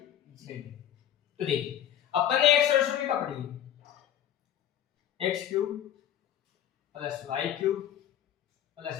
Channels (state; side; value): quieter; right; 10.8 dB